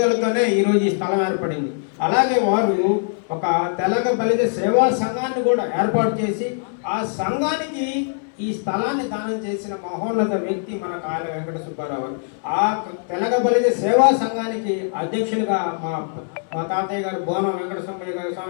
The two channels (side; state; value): right; silent; digital silence